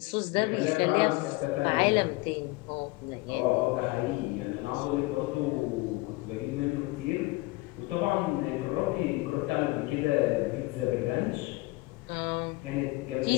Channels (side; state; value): right; quieter; 22.2 dB